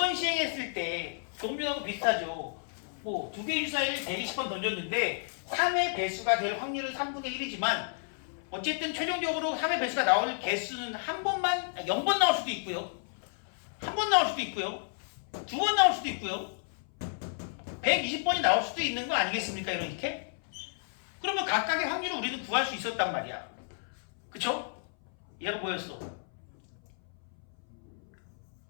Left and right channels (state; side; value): silent; right; 57 dB below the other